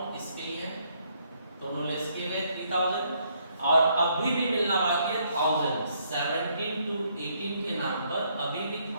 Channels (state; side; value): inverted; both; correlation -0.71